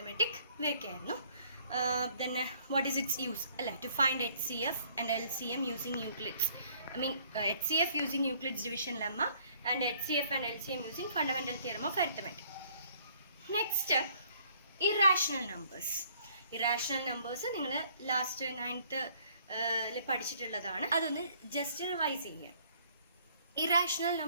ഇവയൊക്കെ ആയിരുന്നു. Then what is its use? To find HCF and LCM using Euclid's. HCF using Euclid's division lemma and HCF and LCM using fundamental theorem of arithmetic. Next, irrational numbers. Irrational numbers നിങ്ങൾ ലാസ്റ്റ് 9th പഠിച്ചിട്ടുള്ളതാണ്. അതൊന്ന് ജസ്റ്റ് റിവൈസ് ചെയ്യാം. Irrational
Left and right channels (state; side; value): inverted; both; correlation -0.61